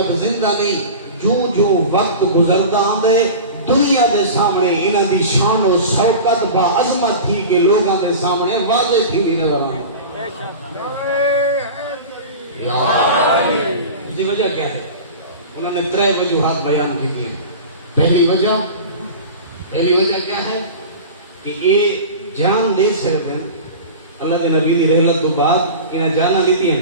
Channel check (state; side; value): inverted; both; correlation -0.33